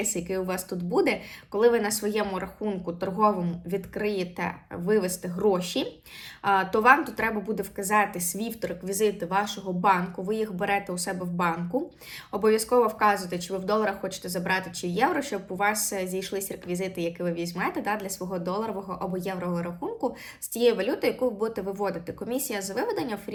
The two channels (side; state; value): both; identical; correlation 1.00